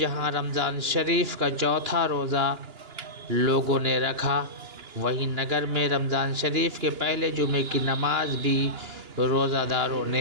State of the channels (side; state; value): left; late; 2.9 ms